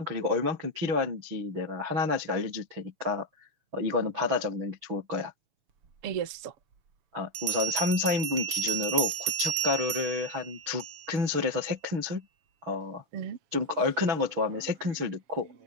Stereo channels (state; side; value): late; left; 6.9 ms